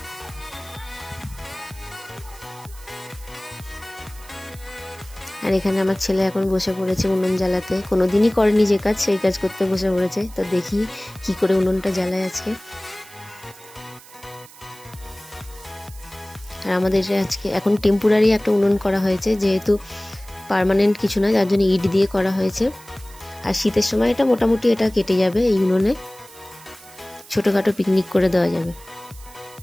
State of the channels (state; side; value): noise; right; hiss, 21 dB below the sound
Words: আর এখানে আমার ছেলে এখন বসে পড়েছে উনুন জ্বালাতে। কোনোদিনই করেনি যে কাজ সেই কাজ করতে বসে পড়েছে। তো দেখি কি করে উনুনটা জ্বালায় আজকে। আর আমাদের আজকে এখন টেম্পোরারি একটা উনুন করা হয়েছে, যেহেতু পার্মানেন্ট কিছু না, যার জন্য ইট দিয়ে করা হয়েছে। আর শীতের সময় এটা মোটামুটি এটা কেটে যাবে, এই উনুনে ছোটোখাটো পিকনিক করে দেওয়া যাবে।